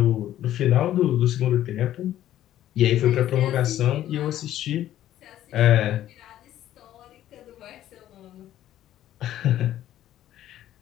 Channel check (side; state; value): right; quieter; 12.6 dB